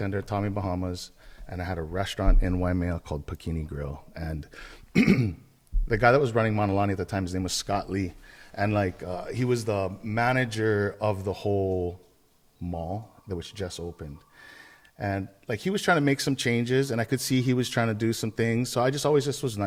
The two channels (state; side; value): identical; both; correlation 1.00